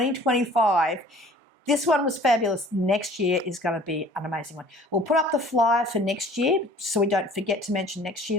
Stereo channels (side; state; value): both; normal; correlation 0.50